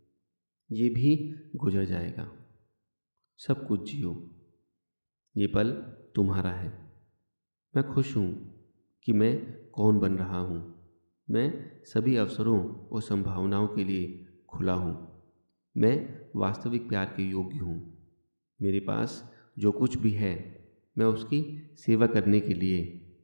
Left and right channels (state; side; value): inverted; both; correlation -1.00